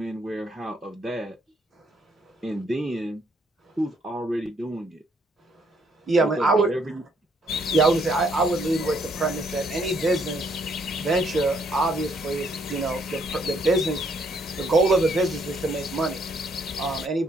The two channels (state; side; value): normal; both; correlation 0.70